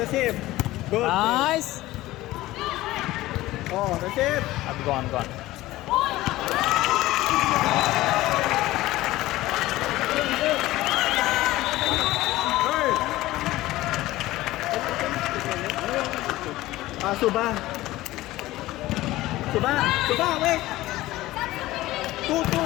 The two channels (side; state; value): right; quieter; 17.1 dB